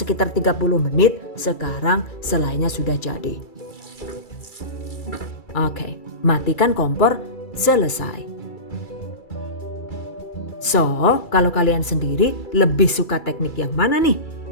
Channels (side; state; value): right; late; 2.3 ms